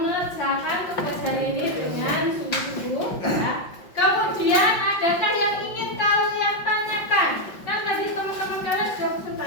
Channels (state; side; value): late; right; 5.5 ms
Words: tugas hari ini dengan sungguh-sungguh ya. Kemudian adakah yang ingin kalian tanyakan? Kan tadi teman-teman kalian sudah